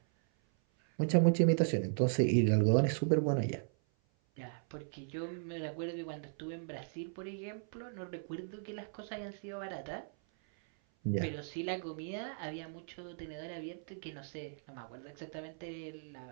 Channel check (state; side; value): silent; left; 53 dB below the other